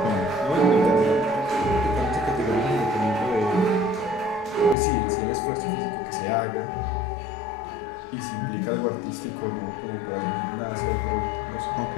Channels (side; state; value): right; drops out; at 4.8 s